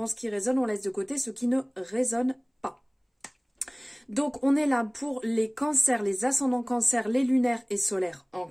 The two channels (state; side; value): identical; both; correlation 1.00